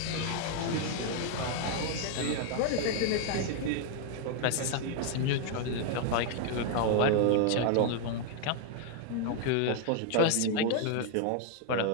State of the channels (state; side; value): different; both; correlation 0.00